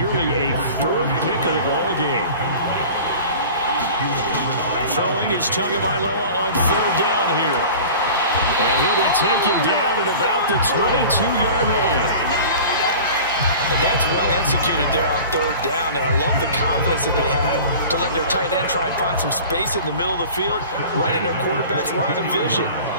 a 4th pick of the ball game. Throwing is Tagovailoa on 3rd down here. And he'll be taken down at about the 22-yard line. And that's well executed there on 3rd down. And I love the confidence that they had to let their tight end try and find some space in the middle of the field, right in their quarterback's line of vision.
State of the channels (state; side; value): inverted; both; correlation -0.40